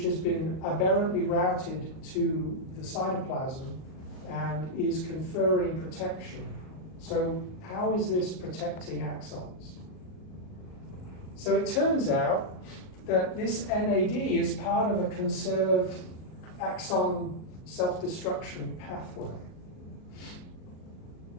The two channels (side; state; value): right; late; 38 ms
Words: has been aberrantly routed to the cytoplasm and is conferring protection. So how is this protecting axons? So it turns out that this NAD is part of a conserved axon self-destruction pathway.